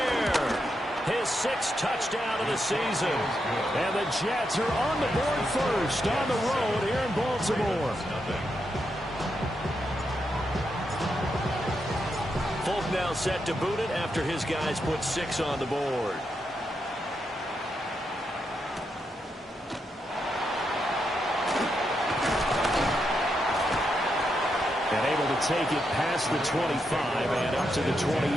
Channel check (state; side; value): normal; both; correlation 0.83